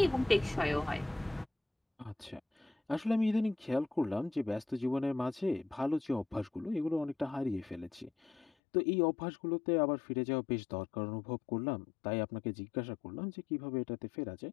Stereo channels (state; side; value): drops out; right; at 8.5 s